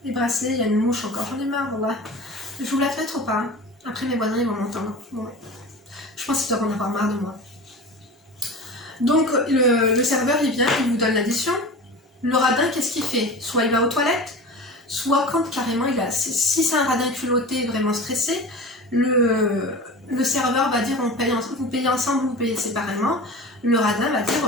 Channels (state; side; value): normal; both; correlation 0.34